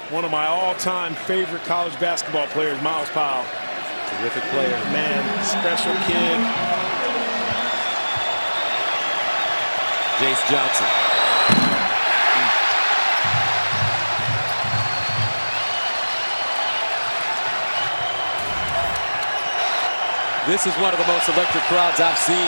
One of my all-time favorite college basketball players, Miles Powell. Terrific player. Man, special kid. Jace Johnson. This is one of the most electric crowds I've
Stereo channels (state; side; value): inverted; both; correlation -1.00